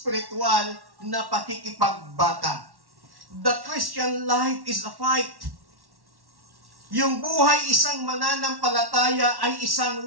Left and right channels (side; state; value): left; late; 1.1 ms